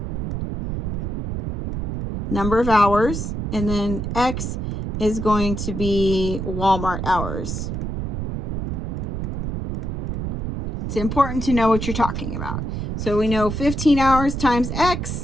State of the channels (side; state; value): right; noise; rumble, 3 dB below the sound